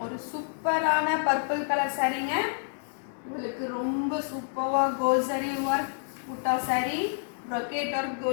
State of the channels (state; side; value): silent; right; digital silence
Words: ஒரு சூப்பரான பர்பிள் கலர் சாரீங்க. உங்களுக்கு ரொம்ப சூப்பராக கோல்சரி work butta sari, brocade work